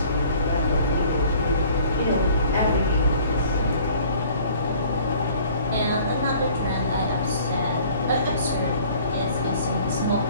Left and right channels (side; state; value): both; inverted; correlation -0.53